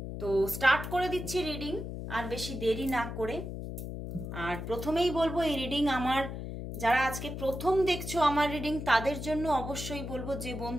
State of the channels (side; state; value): left; noise; hum, 7 dB below the sound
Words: তো স্টার্ট করে দিচ্ছি রিডিং আর বেশি দেরি না করে। আর প্রথমেই বলবো এই রিডিং আমার, যারা আজকে প্রথম দেখছো আমার রিডিং তাদের জন্য অবশ্যই বলবো, যে